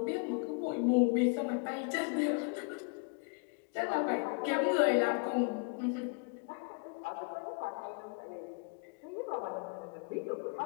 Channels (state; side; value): quieter; right; 34.3 dB